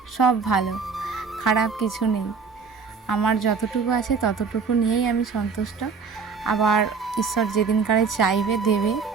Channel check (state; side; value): quieter; left; 5.4 dB